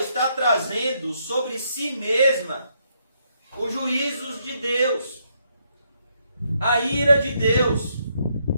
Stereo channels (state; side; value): inverted; both; correlation -0.75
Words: trazendo sobre si mesma os juízos de Deus, a ira de Deus.